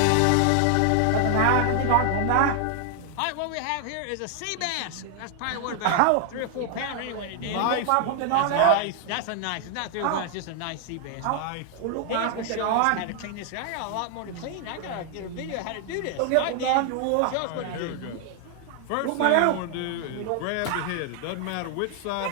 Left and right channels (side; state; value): both; different; correlation 0.00